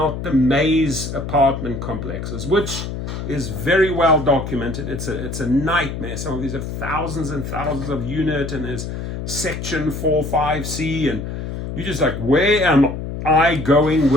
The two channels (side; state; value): left; noise; hum, 6 dB below the sound